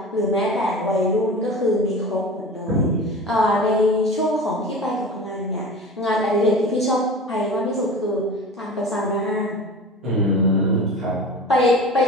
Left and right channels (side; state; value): both; normal; correlation 0.35